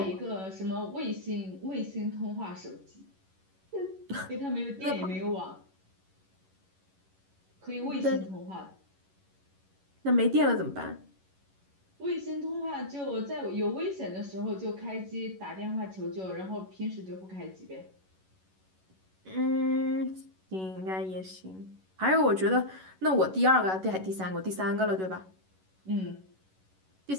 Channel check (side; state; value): left; late; 11 ms